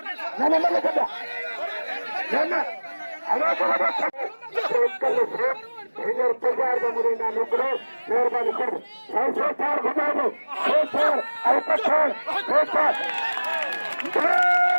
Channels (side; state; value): both; inverted; correlation -1.00